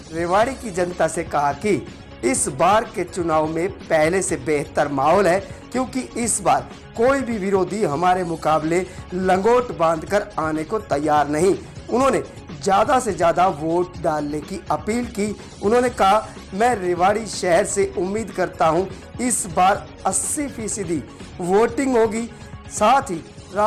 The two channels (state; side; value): identical; both; correlation 1.00